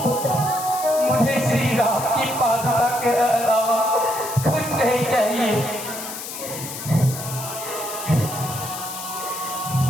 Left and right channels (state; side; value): noise; left; hiss, 9 dB below the sound